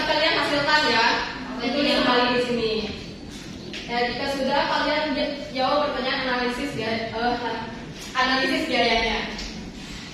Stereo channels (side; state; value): both; identical; correlation 1.00